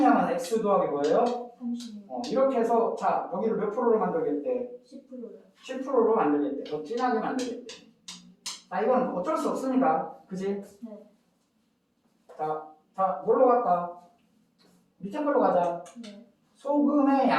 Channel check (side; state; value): both; identical; correlation 1.00